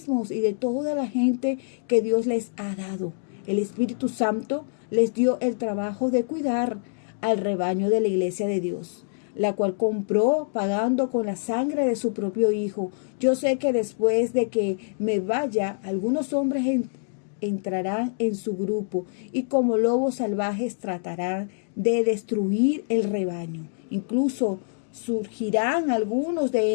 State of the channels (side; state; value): right; silent; digital silence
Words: y de toda la gente que Dios les ha dado. El Espíritu Santo les dio el trabajo de cuidar al rebaño de la iglesia de Dios, la cual compró pagando con la sangre de su propio Hijo. Yo sé que después de que me vaya, algunos hombres entrarán en su grupo y como lobos salvajes tratarán de destruir el rebaño. Incluso surgirán algunos